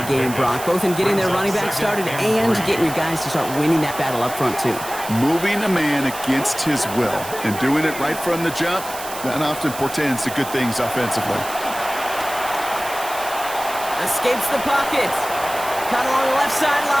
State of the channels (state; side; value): noise; right; hiss, 11 dB below the sound